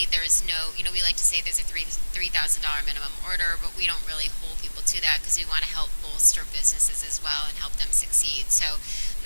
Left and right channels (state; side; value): inverted; both; correlation -1.00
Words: there's no, we like to say there's a $3,000 minimum order, but we don't really hold people to that, because we want to help bolster businesses as well and help them succeed. So